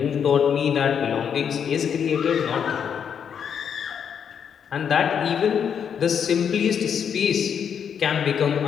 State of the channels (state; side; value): quieter; right; 7.7 dB